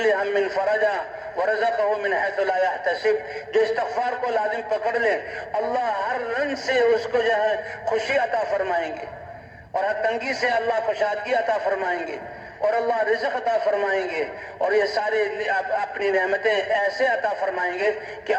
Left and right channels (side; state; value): both; identical; correlation 1.00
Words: هم فرجا ورزقه من حيث لا يحتسب، جو استغفار کو لازم پکڑ لے اللہ ہر رنگ سے اس کو جو ہے خوشی عطا فرمائیں گے، اور ہر تنگی سے اللہ کشادگی عطا فرمائیں گے، اور اللہ رزق عطا فرمائیں گے، اور یہ ساری اپنی نعمتیں ایسے عطا فرمائیں گے کہ